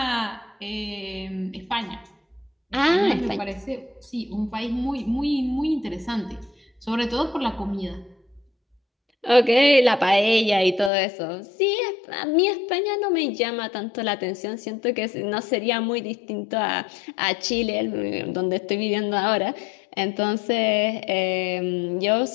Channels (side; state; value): right; drops out; at 10.9 s